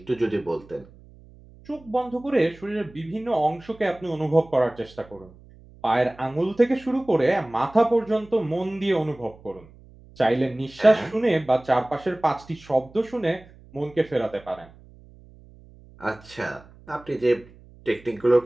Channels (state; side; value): noise; right; hum, 23 dB below the sound